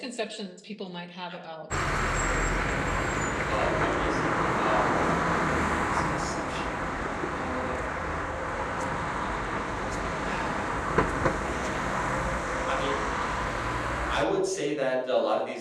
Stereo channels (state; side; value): identical; both; correlation 1.00